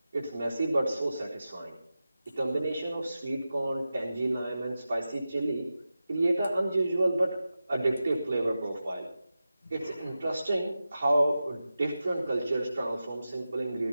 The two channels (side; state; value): both; inverted; correlation -0.93